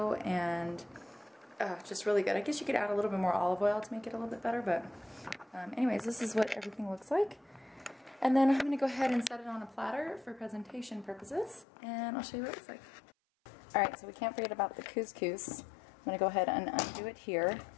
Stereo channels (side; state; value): right; drops out; at 11.7 s